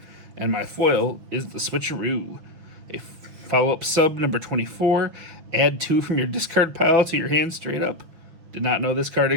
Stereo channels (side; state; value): left; late; 6.1 ms